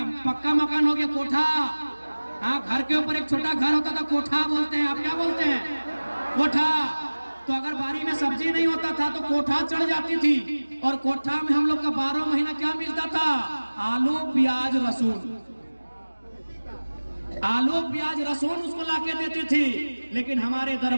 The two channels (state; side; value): inverted; both; correlation -1.00